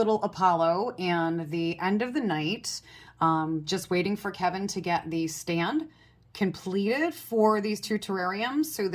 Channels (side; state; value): both; identical; correlation 1.00